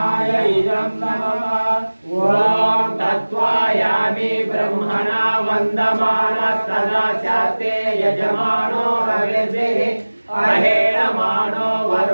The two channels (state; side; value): inverted; both; correlation -1.00